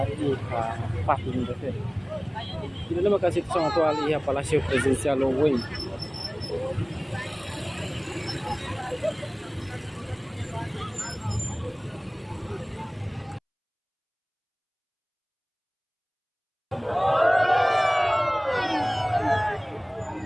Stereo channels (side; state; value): both; identical; correlation 1.00